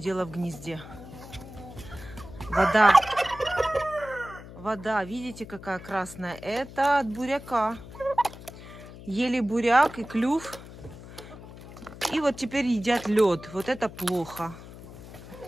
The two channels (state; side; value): noise; left; hum, 16 dB below the sound